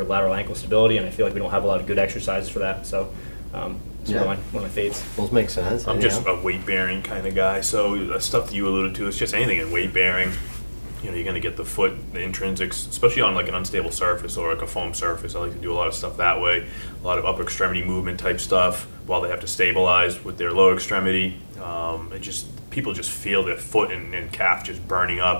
lateral ankle stability, and I feel like we don't have a lot of good exercises for that. So it's one of my faves. Those make sense. I'm just a weight bearing kind of guy, so the stuff that you alluded to is just anything in weight bearing. You know, you're going to get the foot, the intrinsics, especially on like an unstable surface or like a foam surface. I like to do a lot of stuff that way, a lot of upper extremity movement type stuff while they have to stabilize with their lower extremity. People just feel their foot and calf just burning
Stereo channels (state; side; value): inverted; both; correlation -1.00